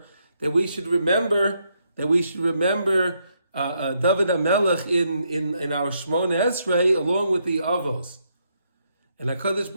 that we should remember David HaMelech in our Shmona Esrei along with the Avos. And HaKadosh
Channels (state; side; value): inverted; both; correlation -0.76